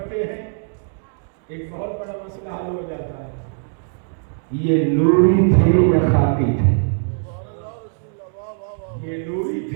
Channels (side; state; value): left; silent; digital silence